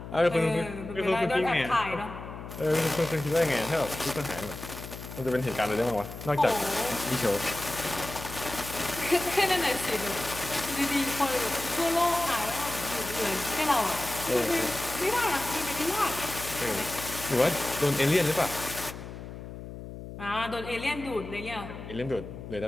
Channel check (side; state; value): left; noise; hum, 11 dB below the sound